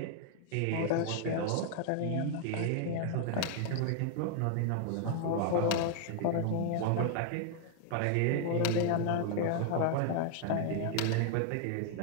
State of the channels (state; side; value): different; both; correlation 0.00